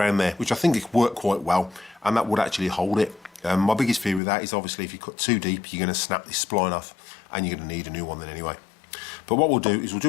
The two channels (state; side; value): drops out; right; at 4.2 s